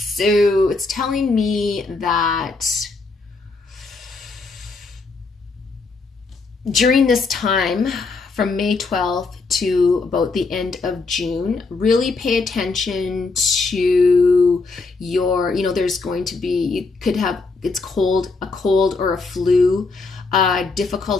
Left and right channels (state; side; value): quieter; right; 3.9 dB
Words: it's telling me that during this time, from May 12th to about the end of June, really pay attention to your, there's going to be, you could have, it's cold, a cold or a flu,